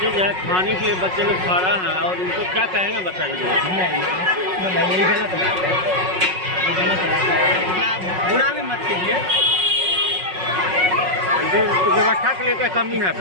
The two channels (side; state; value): left; late; 5.4 ms